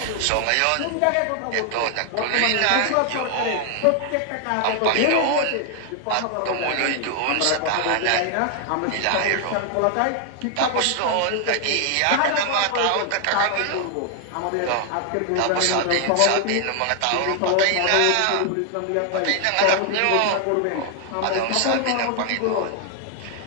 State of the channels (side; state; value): both; different; correlation 0.00